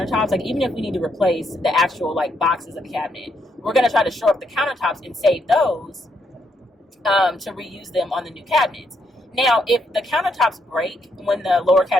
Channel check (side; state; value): both; normal; correlation 0.76